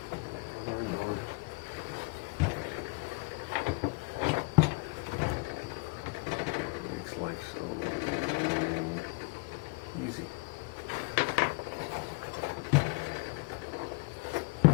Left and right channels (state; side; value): quieter; right; 30.1 dB